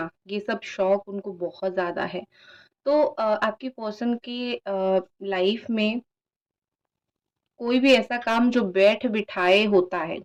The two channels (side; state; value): both; identical; correlation 1.00